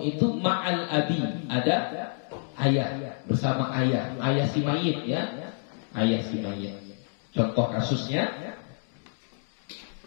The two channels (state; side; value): silent; right; 59 dB below the other